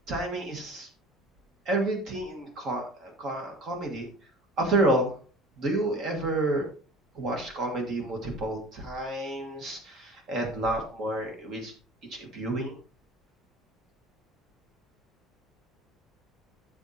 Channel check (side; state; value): both; normal; correlation 0.41